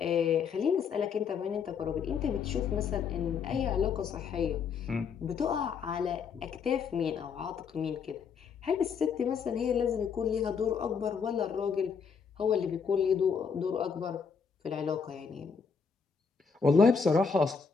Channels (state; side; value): quieter; right; 6.0 dB